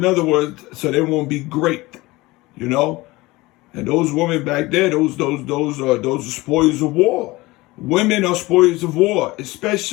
other words, so they won't be great, you know. And those women back there, those are spoils of war. Women are spoils of war,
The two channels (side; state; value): right; quieter; 20.8 dB